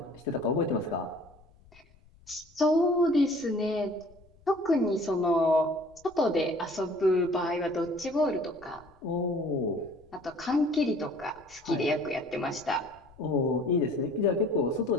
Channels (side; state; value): left; noise; rumble, 27 dB below the sound